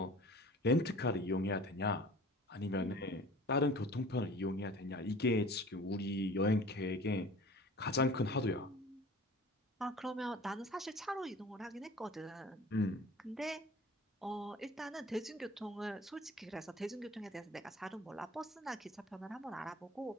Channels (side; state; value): both; normal; correlation 0.44